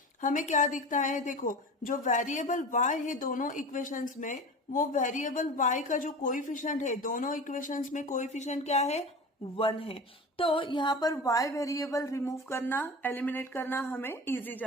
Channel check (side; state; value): both; normal; correlation 0.33